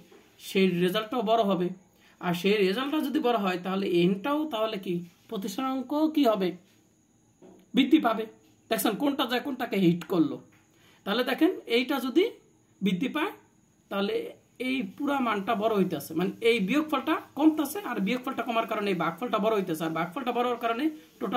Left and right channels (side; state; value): both; identical; correlation 1.00